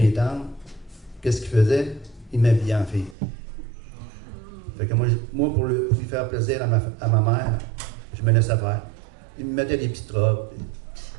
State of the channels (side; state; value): left; drops out; at 3.2 s